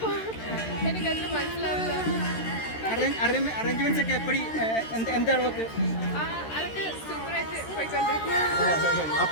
എനിക്കത്ര മനസ്സിലാവില്ല. അറേഞ്ച്മെന്റ്സ് ഒക്കെ എപ്പടി എന്താണ് അതൊക്കെ സൂപ്പറായിട്ട് പോയിക്കൊണ്ടിരിക്കും.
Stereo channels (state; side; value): late; right; 13 ms